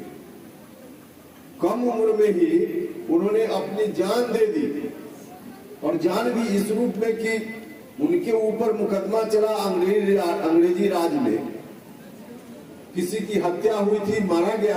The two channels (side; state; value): both; identical; correlation 1.00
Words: कम उम्र में ही उन्होंने अपनी जान दे दी। और जान भी इस रूप में कि उनके ऊपर मुकदमा चला अंग्रेजी राज में, किसी की हत्या हुई थी, मारा